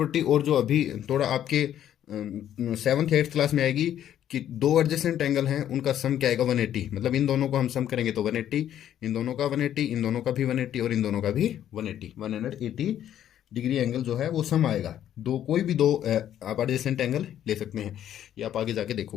और जो अभी थोड़ा आपके 7th 8th क्लास में आएगी कि 2 एडजेसेंट एंगल हैं, उनका सम क्या आएगा? 180। मतलब इन दोनों को हम सम करेंगे तो 180, इन दोनों का 180, इन दोनों का भी 180 और इन दोनों का भी 180 डिग्री एंगल जो है वो सम आएगा। दो, कोई भी 2 आप एडजेसेंट एंगल ले सकते हैं, ये आप आगे जाके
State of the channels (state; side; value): quieter; right; 10.9 dB